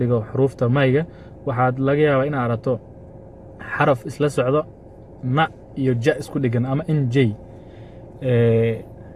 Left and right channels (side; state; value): both; identical; correlation 1.00